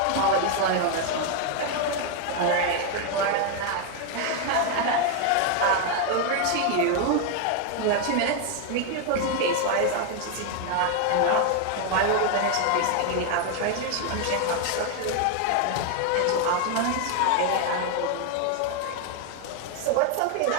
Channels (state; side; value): different; both; correlation 0.01